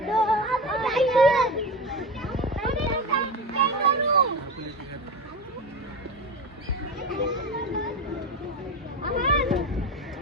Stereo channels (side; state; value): both; normal; correlation 0.24